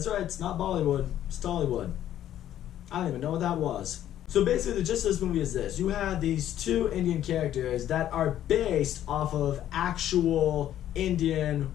right, it's not Bollywood, it's Tollywood. I don't even know what that was. So basically the gist of this movie is this. You have these two Indian characters that are based off of actual Indian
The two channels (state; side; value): quieter; right; 11.7 dB